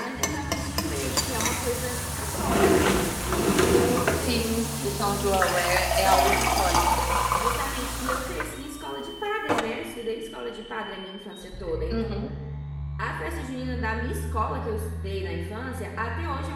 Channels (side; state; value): both; identical; correlation 1.00